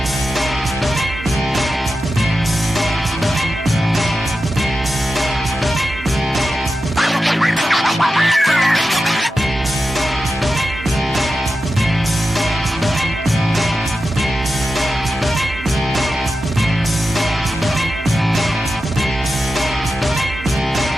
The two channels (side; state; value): both; normal; correlation 0.91